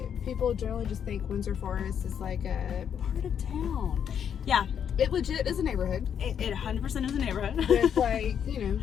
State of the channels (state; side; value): quieter; right; 8.3 dB